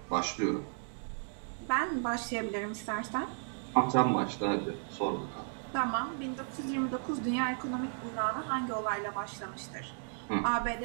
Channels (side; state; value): left; silent; 55 dB below the other